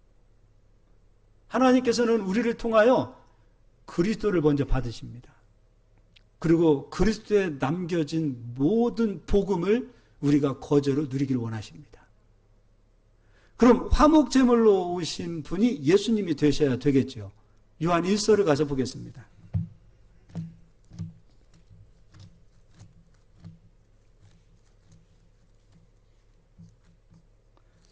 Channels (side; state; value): both; identical; correlation 1.00